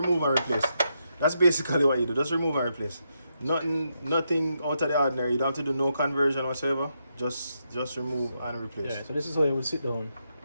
and replace. That's basically what you do. Just remove and replace. Nothing out of the ordinary. You don't have to do no conversion whatsoever. Just remove and replace. Yeah, so this is how it would sit down,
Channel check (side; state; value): both; inverted; correlation -0.82